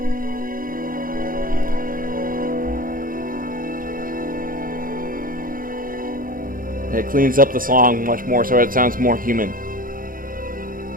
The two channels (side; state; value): left; late; 0.41 ms